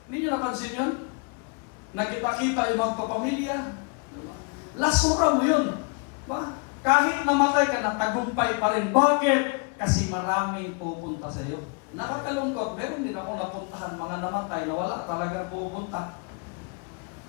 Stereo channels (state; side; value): quieter; right; 33.3 dB